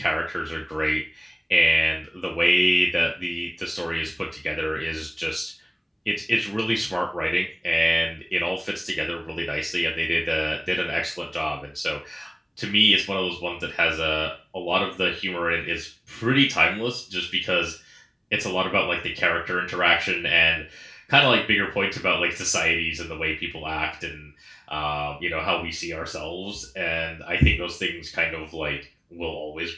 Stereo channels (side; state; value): both; identical; correlation 1.00